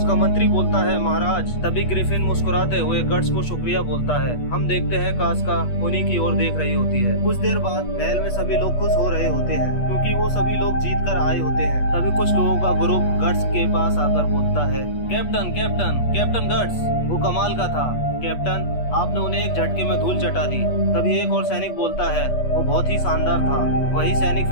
मंत्री बोलता है, महाराज। तभी ग्रिफिन मुस्कुराते हुए गट्स को शुक्रिया बोलता है। हम देखते हैं कास्का उन्हीं की ओर देख रही होती है। कुछ देर बाद महल में सभी लोग खुश हो रहे होते हैं क्योंकि वो सभी लोग जीत कर आए होते हैं। तभी कुछ लोगों का ग्रुप गट्स के पास आकर बोलता है, कैप्टन कैप्टन कैप्टन गट्स, वो कमाल का था। कैप्टन, आपने उन्हें एक झटके में धूल चटा दी। तभी एक और सैनिक बोलता है, वो बहुत ही शानदार था। वही सैनिक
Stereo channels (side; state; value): right; late; 8.3 ms